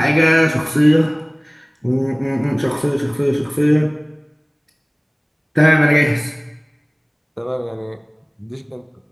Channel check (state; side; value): identical; both; correlation 1.00